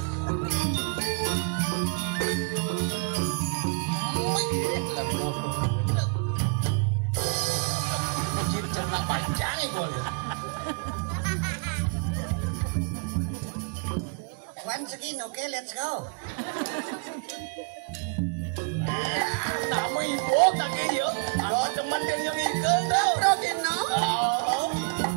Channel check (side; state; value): left; quieter; 37.2 dB